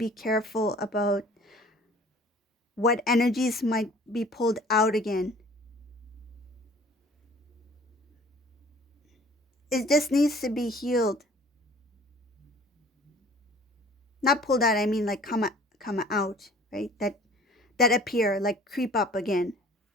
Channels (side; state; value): both; normal; correlation 0.50